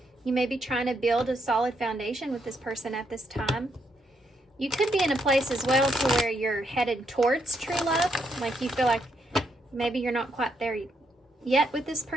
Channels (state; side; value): normal; both; correlation 0.77